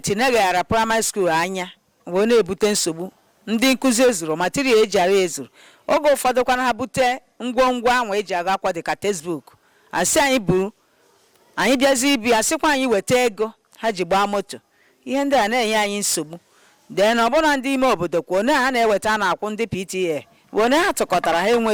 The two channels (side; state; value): both; identical; correlation 1.00